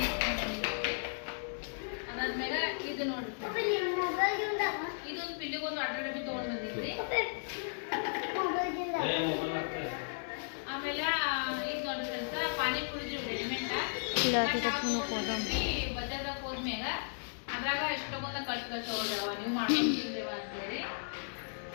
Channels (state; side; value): silent; right; digital silence